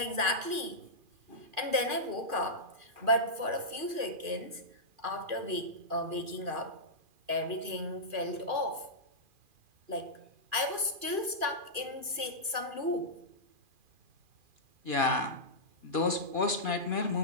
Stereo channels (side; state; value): left; late; 2.4 ms